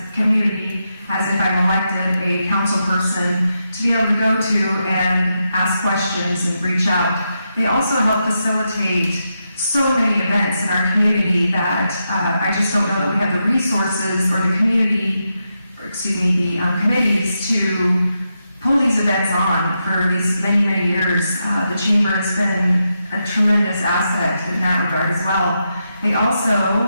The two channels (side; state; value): both; inverted; correlation -0.85